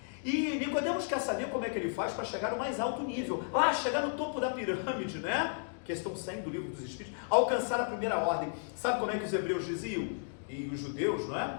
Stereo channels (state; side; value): silent; right; digital silence